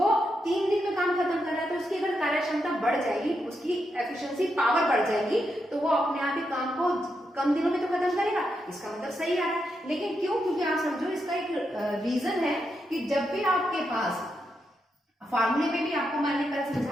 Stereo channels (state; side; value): normal; both; correlation 0.83